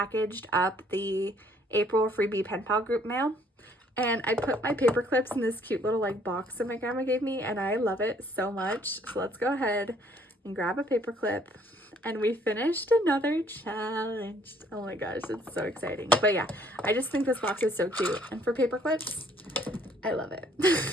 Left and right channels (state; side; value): normal; both; correlation 0.62